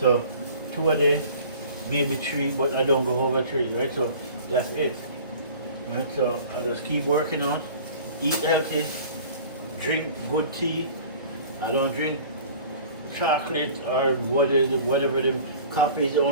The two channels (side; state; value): both; inverted; correlation -0.45